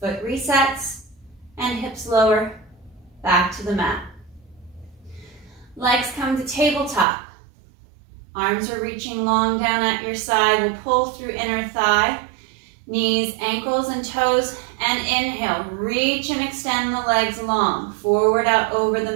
Foot resets and hips lower, back to the mat. Legs come to tabletop. Arms are reaching long down at your side. We'll pull through inner thigh, knees, ankles, and toes, and inhale. Reach and extend the legs long, forward out over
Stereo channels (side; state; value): left; drops out; at 7.1 s